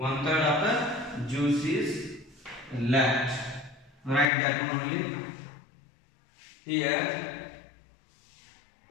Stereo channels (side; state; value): right; drops out; at 4.3 s